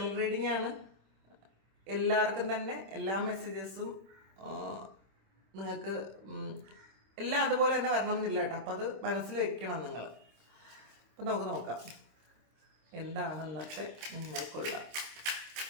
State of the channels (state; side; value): late; left; 26 ms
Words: റീഡിംഗ് ആണ്. എല്ലാവർക്കും തന്നെ എല്ലാ മെസ്സേജസും നിങ്ങൾക്ക് എല്ലാം അതുപോലെ തന്നെ വരണം എന്നില്ല കേട്ടോ. അപ്പോൾ അത് മനസ്സിൽ വെക്കണം നിങ്ങൾ. അപ്പം നമുക്ക് നോക്കാം എന്താണ് ഇന്നത്തെ നിങ്ങൾക്കുള്ള